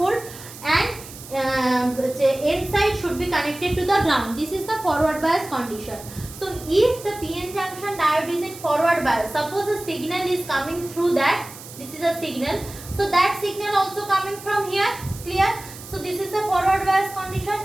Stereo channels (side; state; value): right; noise; hiss, 15 dB below the sound